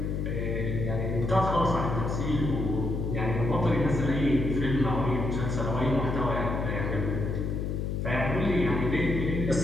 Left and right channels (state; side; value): noise; left; hum, 2 dB below the sound